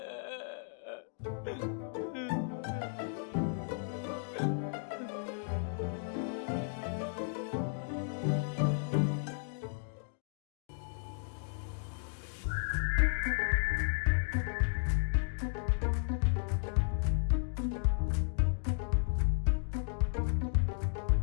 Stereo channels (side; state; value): right; silent; digital silence